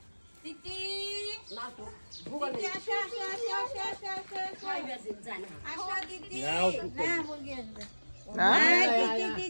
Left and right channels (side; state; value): both; inverted; correlation -1.00